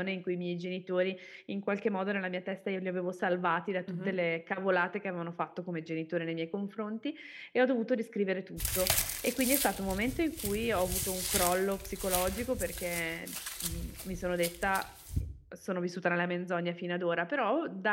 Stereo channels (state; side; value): identical; both; correlation 1.00